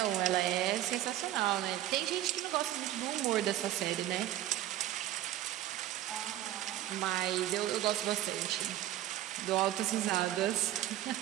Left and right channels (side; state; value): left; quieter; 13.5 dB